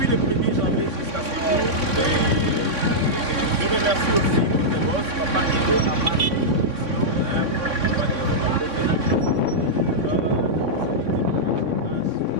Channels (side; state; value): left; late; 3.6 ms